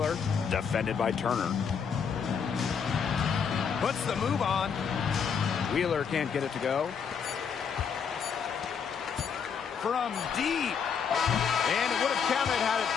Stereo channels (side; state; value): right; quieter; 6.7 dB